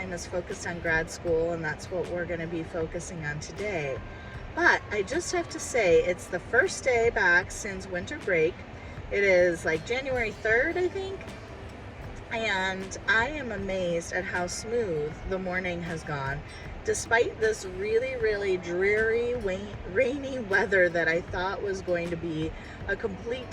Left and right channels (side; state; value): both; identical; correlation 1.00